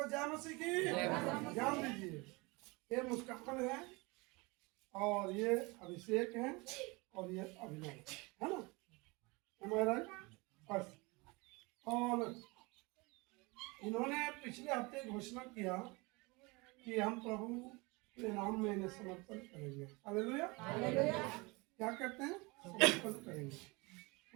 जय मसीह की। ध्यान दीजिए, ये मुस्कान है और ये अभिषेक है और ये अभिनव है ना, हमारा फर्स्ट। और इन्होंने पिछले हफ्ते घोषणा किया कि हम प्रभु के नाम में इन्हें समर्पण करेंगे। हालेलुया। क्या कहते हैं? समर्पण करेंगे।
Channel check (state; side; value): quieter; left; 26.0 dB